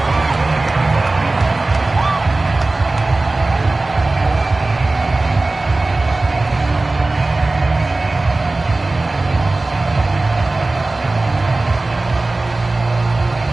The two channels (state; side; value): quieter; left; 3.1 dB